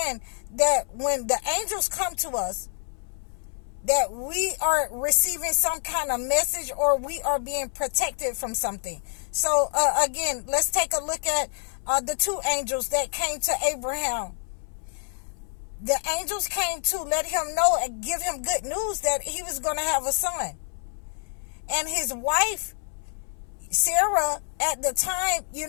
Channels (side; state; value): right; silent; 60 dB below the other